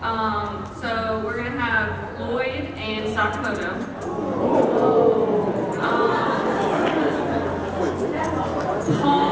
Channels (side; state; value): both; identical; correlation 1.00